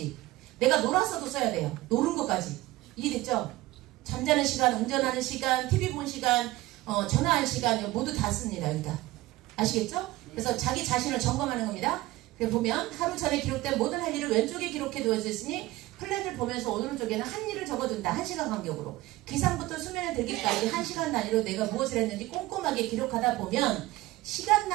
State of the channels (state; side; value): quieter; left; 18.0 dB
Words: 내가 놀았어도 써야 돼요. 노는 것까지. 이해됐죠? 잠자는 시간, 운전하는 시간, TV 본 시간, 전화할 시간 모두 다 씁니다. 여기다. 아시겠죠? 그래서 자기 자신을 점검하는 겁니다. 그래서 보면 하루 전에 기록된 모든 할 일을 왼쪽에 기록해 두어졌으니 플랜을 보면서 오른쪽에는 한 일을 적어둔다. 1시간 간격으로. 기상부터 수면에 들기까지 1시간 단위로 내가 무엇을 했는지 꼼꼼하게 기록하다 보면 시간